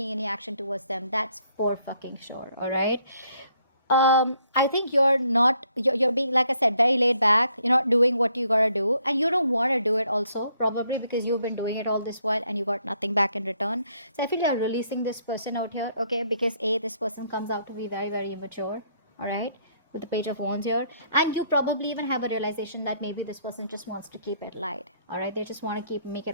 any action towards them. That's for fucking sure. All right. I think you're being, like I said, very laid back. You're not doing what you gotta do, and you don't want to do it also, probably because you've been doing it all this while and you got nothing back in return. So I feel you're releasing this person out here, okay? Because this person comes out to be very, very immature, all right? With the Page of Wands here, and you probably even have a realization that maybe this person just wants to keep it light, all right? They just want to make it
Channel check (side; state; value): both; inverted; correlation -0.69